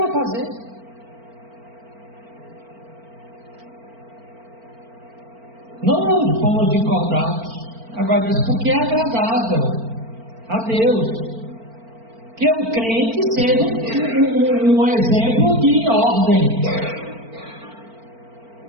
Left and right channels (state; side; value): late; left; 4.4 ms